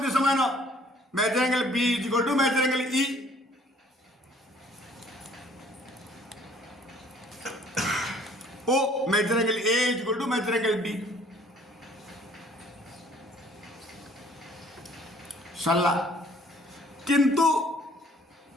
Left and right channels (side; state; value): both; normal; correlation 0.57